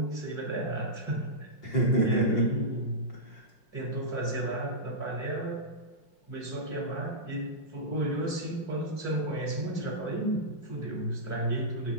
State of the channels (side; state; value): right; late; 5.6 ms